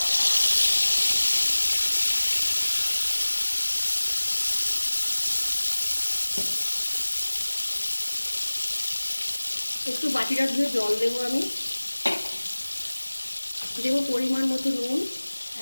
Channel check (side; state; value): both; inverted; correlation -1.00